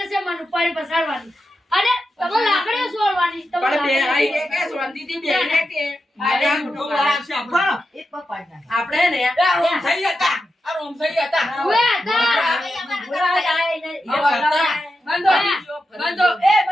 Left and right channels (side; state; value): both; normal; correlation 0.89